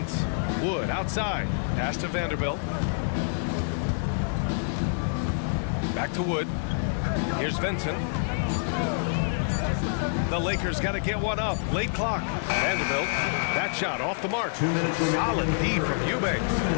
Wood outside. Pass to Vanderbilt. Back to Wood. Here's Vincent. The Lakers got to get one up. Late clock. Vanderbilt. That shot off the mark. Solid D from Eubanks.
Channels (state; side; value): silent; right; digital silence